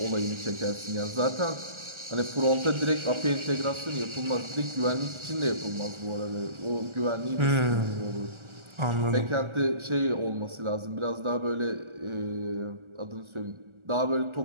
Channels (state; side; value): late; left; 1.4 ms